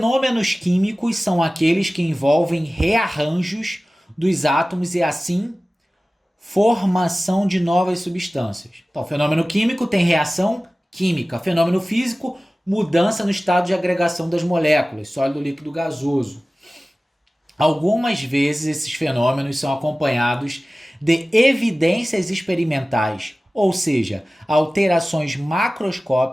químicos são aqueles que envolvem rearranjos dos átomos e assim formação de novas substâncias. Então, fenômeno químico tem reação química. Fenômeno físico, mudança no estado de agregação das moléculas, sólido, líquido, gasoso. Algumas vezes esses fenômenos são acompanhados de evidências experimentais, ou seja, alterações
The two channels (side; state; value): both; normal; correlation 0.97